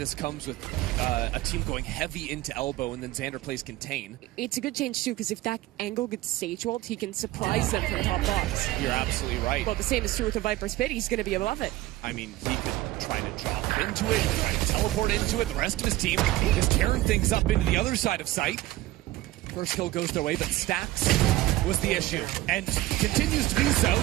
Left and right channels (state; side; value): quieter; left; 16.9 dB